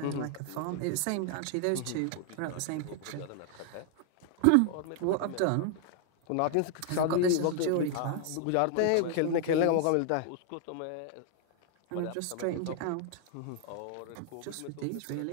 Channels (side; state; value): both; different; correlation 0.00